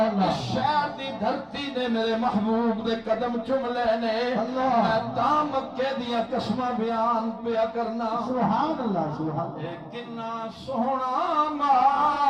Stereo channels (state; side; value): identical; both; correlation 1.00